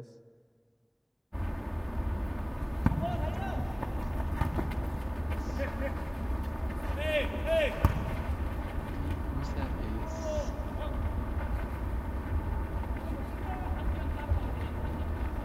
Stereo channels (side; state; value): both; identical; correlation 1.00